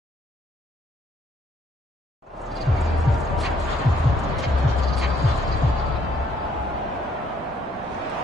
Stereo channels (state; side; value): normal; both; correlation 0.67